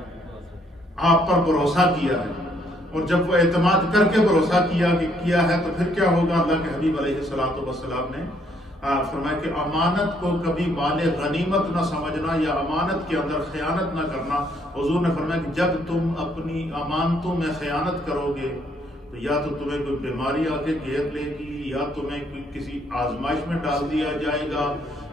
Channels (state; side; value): normal; both; correlation 0.68